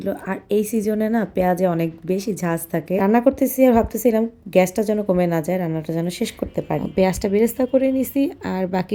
আর এই সিজনে না পেঁয়াজে অনেক বেশি ঝাঁজ থাকে। রান্না করতেছি আর ভাবতেছিলাম গ্যাসটা যেন কমে না যায়, রান্নাটা যেন শেষ করতে পারি। পেঁয়াজটা বেরেস্তা করে নিছি, আর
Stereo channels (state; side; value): identical; both; correlation 1.00